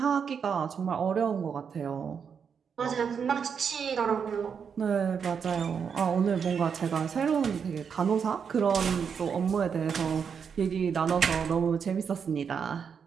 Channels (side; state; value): left; quieter; 6.7 dB